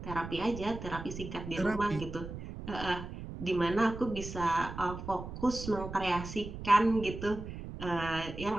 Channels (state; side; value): noise; right; rumble, 9 dB below the sound